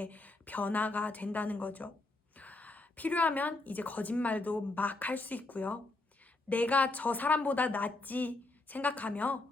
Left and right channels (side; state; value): right; quieter; 3.1 dB